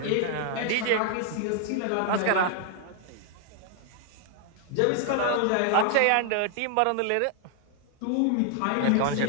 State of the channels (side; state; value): both; different; correlation 0.00